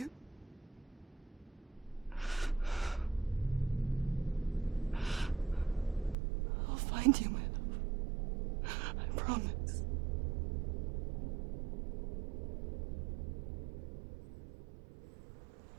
I'll find you, my love. I promise.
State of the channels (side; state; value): left; drops out; at 6.2 s